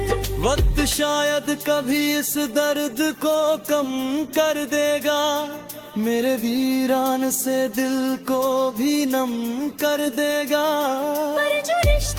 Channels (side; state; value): both; identical; correlation 1.00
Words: वक्त शायद कभी इस दर्द को कम कर देगा, मेरे वीरान से दिल को भी नम कर देगा। पर जो